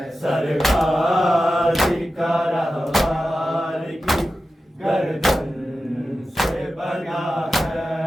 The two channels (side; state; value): both; normal; correlation 0.93